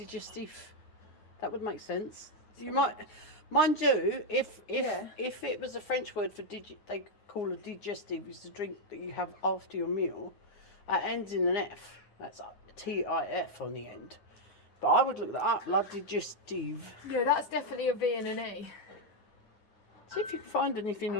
That would make sense. You might, mind you, if it was a French word for they call a digestive is the drink that you have after your meal. It ends in an F. That's TIF on the end. But I would look that up. La digestive. Yeah, that's definitely a V and an E. See if you can find anything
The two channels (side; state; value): right; late; 9.6 ms